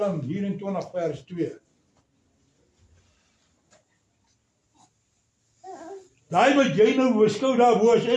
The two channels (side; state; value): both; identical; correlation 1.00